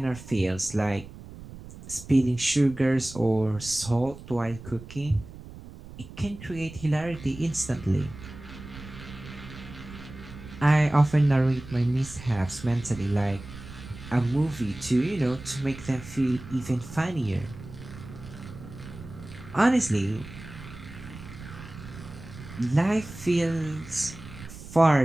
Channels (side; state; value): right; noise; rumble, 15 dB below the sound